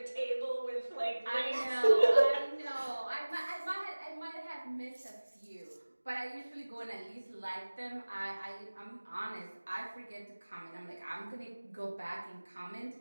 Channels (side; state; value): both; inverted; correlation -1.00